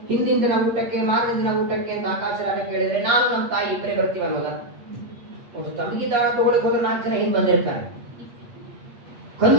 ಹಿಂದಿನ ದಿನ ಊಟಕ್ಕೆ, ಮಾರನೇ ದಿನ ಊಟಕ್ಕೆ ಅಂತ ಆಕಾಶರಾಗ ಕೇಳಿದ್ರೆ ನಾನು ನಮ್ಮ ತಾಯಿ ಇಬ್ಬರೇ ಬರ್ತೀವಿ ಅನ್ನೋದ? ಒಂದು ತಂಗಿ ದಾನ ತಗೊಳಕ್ ಹೋದ್ರೆ 4 ಜನ ಹಿಂದೆ ಬಂದಿರ್ತಾರೆ.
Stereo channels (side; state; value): left; late; 8.4 ms